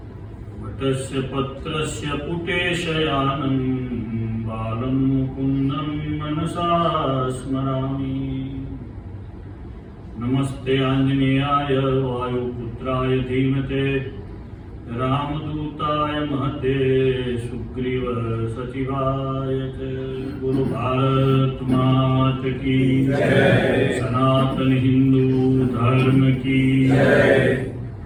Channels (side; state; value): both; identical; correlation 1.00